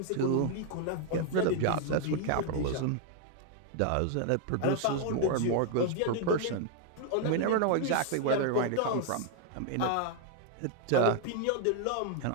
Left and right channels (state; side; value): different; both; correlation 0.00